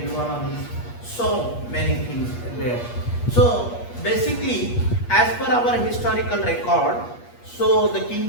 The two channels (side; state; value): right; late; 8.4 ms